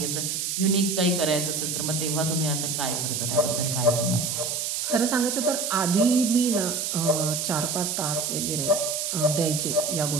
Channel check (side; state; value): right; noise; hiss, 1 dB below the sound